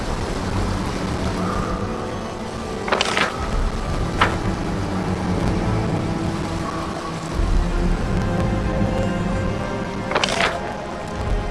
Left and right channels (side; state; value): both; identical; correlation 1.00